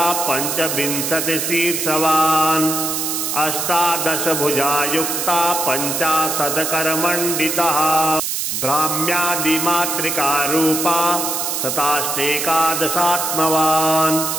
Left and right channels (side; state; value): right; noise; hiss, 1 dB below the sound